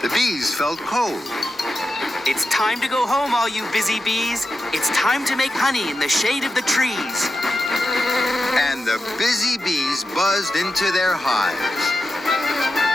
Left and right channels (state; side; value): normal; both; correlation 0.89